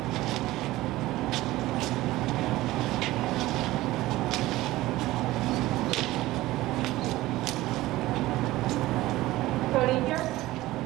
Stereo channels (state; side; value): quieter; left; 17.4 dB